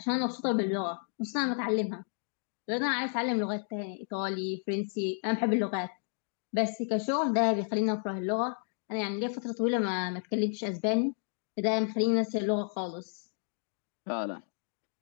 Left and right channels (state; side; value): silent; right; 57 dB below the other